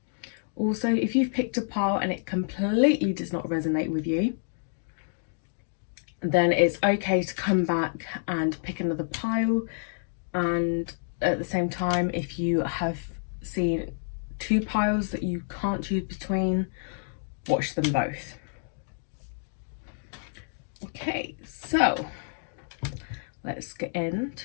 Also, if you've picked a pile and it completely does not resonate with you, then it's okay to come back and pick another pile. And at the same time, if you have seen 2 piles that you can't choose between, watch them both. Okay, so let's get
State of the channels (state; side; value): silent; right; digital silence